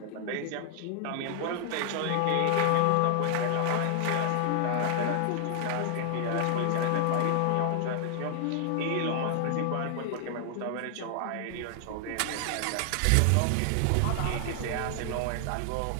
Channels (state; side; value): different; both; correlation 0.00